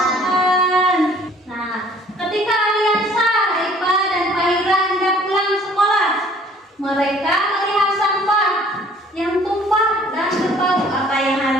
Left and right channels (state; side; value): normal; both; correlation 0.55